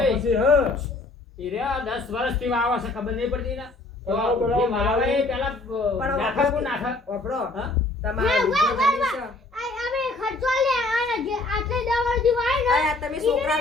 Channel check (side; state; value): right; quieter; 3.1 dB